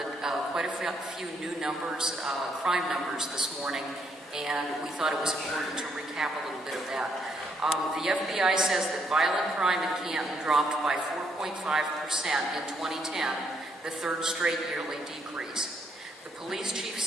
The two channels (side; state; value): both; normal; correlation 0.73